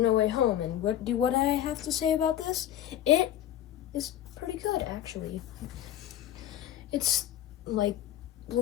No Way Home. And what I have to say about this? It is pretty good, actually. It's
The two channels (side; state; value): right; quieter; 11.7 dB